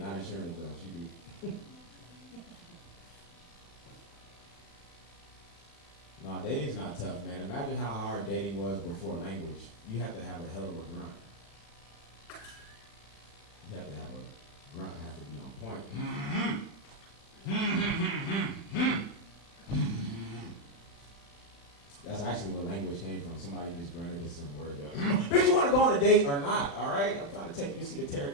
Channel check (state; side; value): late; right; 35 ms